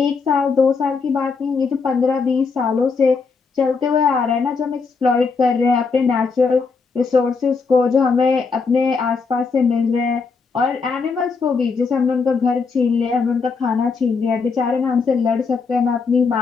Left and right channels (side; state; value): right; quieter; 4.8 dB